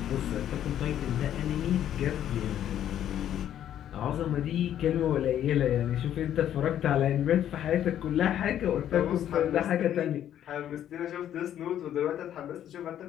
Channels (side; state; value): right; quieter; 10.8 dB